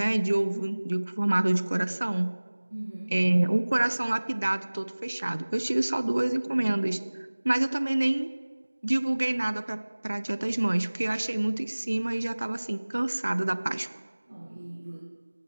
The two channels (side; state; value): both; inverted; correlation -1.00